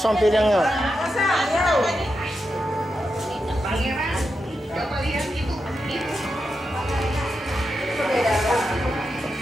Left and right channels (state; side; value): normal; both; correlation 0.87